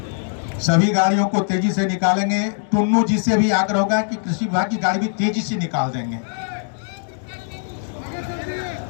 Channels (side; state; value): right; silent; digital silence